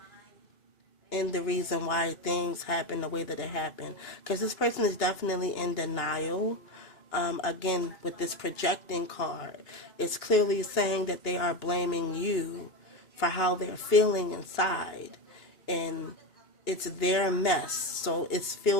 in the reason why things happen the way that it happened. Because this person is definitely in denial. Again, with this projecting card, it's clearly saying that they are blaming you for how they're feeling inside. And it's their mess. So it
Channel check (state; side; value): late; right; 2.8 ms